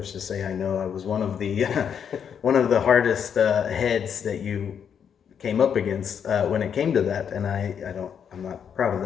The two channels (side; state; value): right; quieter; 7.8 dB